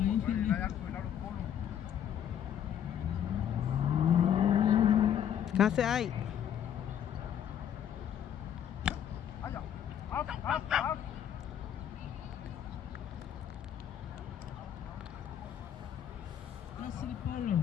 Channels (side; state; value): right; quieter; 9.5 dB